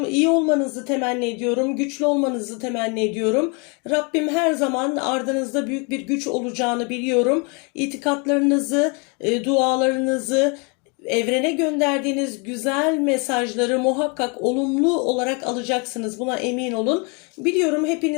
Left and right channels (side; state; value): right; quieter; 33.1 dB